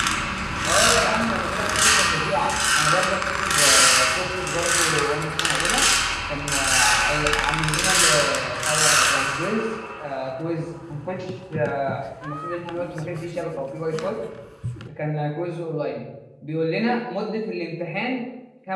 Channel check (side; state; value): both; identical; correlation 1.00